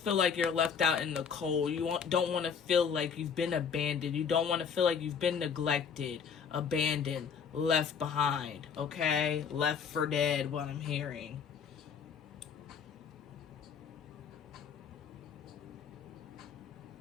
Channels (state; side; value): quieter; right; 6.7 dB